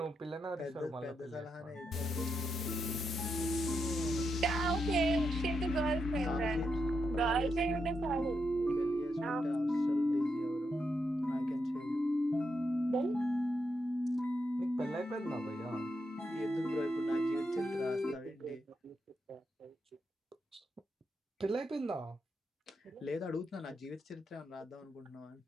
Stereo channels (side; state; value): both; normal; correlation 0.83